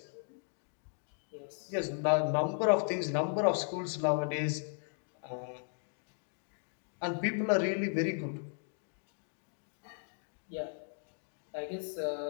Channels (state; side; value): silent; right; 54 dB below the other